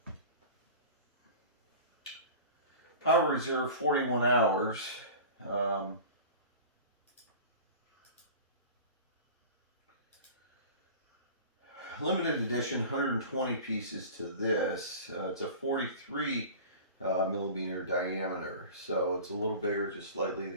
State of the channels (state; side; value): inverted; both; correlation -0.37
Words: Power reserve 41 hours. Limited edition, 120 pieces to this. It's a 43 millimeter diameter, so it's a little bigger, just slightly.